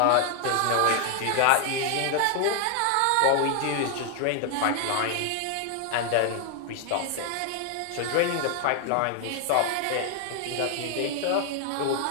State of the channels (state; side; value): different; both; correlation 0.00